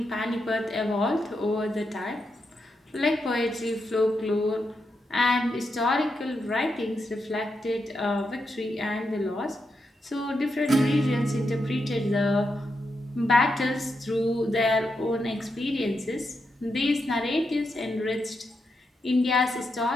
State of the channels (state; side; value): normal; both; correlation 0.84